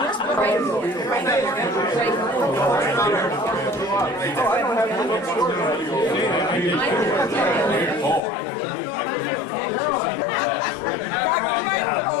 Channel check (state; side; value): drops out; right; at 8.2 s